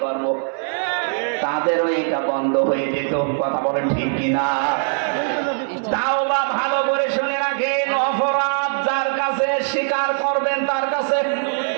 করবো, তাদেরও এটা বন্ধ হয়ে যেত। কথা বলেন ঠিক কিনা? তাওবা ভালো করে শুনে রাখেন, অপরাধ যার কাছে স্বীকার করবেন তার কাছে,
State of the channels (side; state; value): left; silent; digital silence